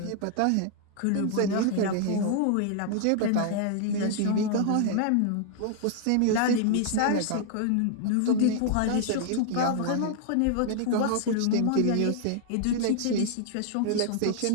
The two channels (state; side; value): different; both; correlation 0.00